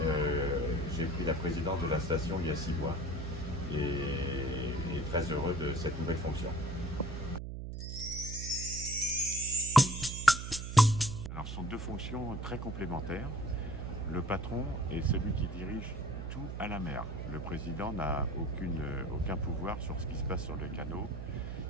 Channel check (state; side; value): noise; right; hum, 6 dB below the sound